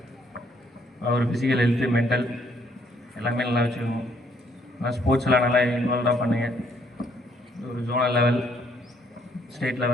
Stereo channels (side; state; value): both; normal; correlation 0.68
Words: ஒரு ஃபிசிக்கல் ஹெல்த்து, மென்டல் எல்லாமே நல்லா வச்சுக்கணும். நல்லா ஸ்போர்ட்ஸ்லாம் நல்லா இன்வால்வாக பண்ணுங்கள். ஒரு ஜோனல் லெவல், ஸ்டேட்